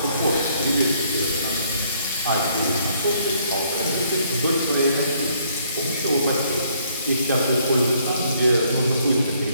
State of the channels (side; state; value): both; inverted; correlation -0.66